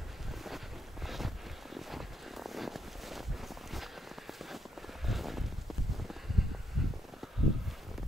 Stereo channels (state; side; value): normal; both; correlation 0.78